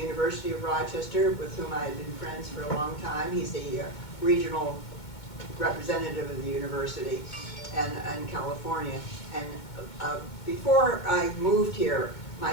of Rochester, with whom I had been friends for a long time. He's the regional representative of the university in California. And before I moved here, my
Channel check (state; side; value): late; right; 2.2 ms